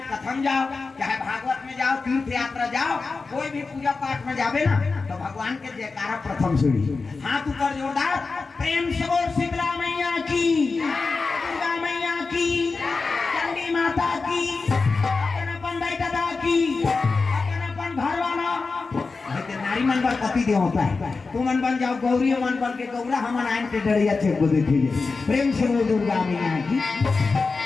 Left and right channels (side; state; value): right; quieter; 4.2 dB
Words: प्रथम जाओ, चाहे भागवत में जाओ, तीर्थ यात्रा जाओ, कोई भी पूजा पाठ में जावे ना तो भगवान के जयकारा प्रथम सीढ़ी। हाथ ऊपर जोरदार, प्रेम से बोल शीतला मैया की, दुर्गा मैया की, चंडी माता की, अपन दाई दादा की, अपन घर वाला नारी मन मन पर पति दे होता है, तू मन बन जाओ गौरी, मन बन के गौरा, हम आयन के डरिया छे को देखिए। प्रेम से बोल दुर्गा मैया की।